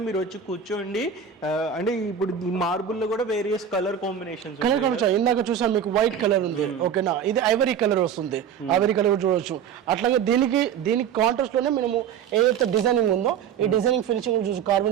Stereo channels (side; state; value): left; quieter; 8.1 dB